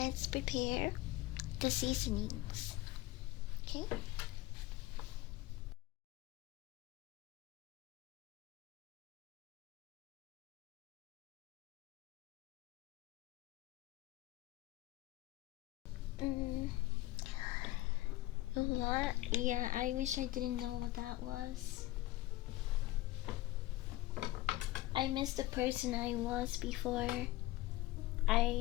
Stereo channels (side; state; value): right; quieter; 17.5 dB